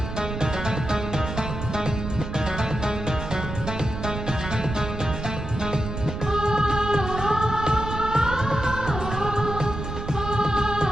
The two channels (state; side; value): noise; right; rumble, 6 dB below the sound